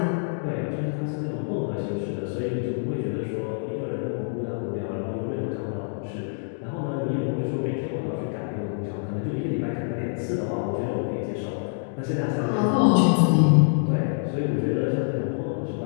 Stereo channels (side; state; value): right; silent; digital silence